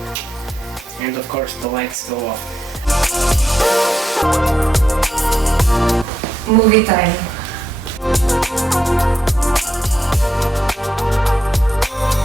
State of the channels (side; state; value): both; normal; correlation 0.82